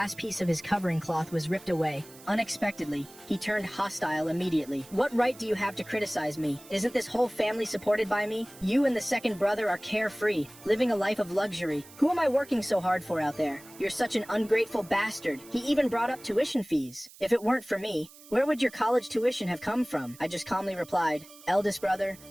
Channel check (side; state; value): right; noise; hiss, 21 dB below the sound